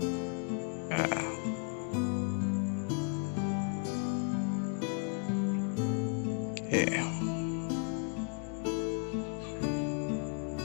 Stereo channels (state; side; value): quieter; right; 38.0 dB